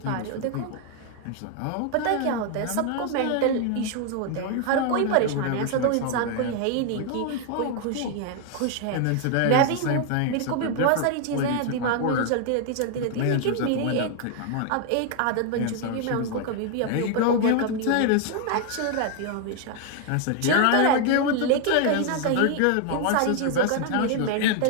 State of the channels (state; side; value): different; both; correlation 0.00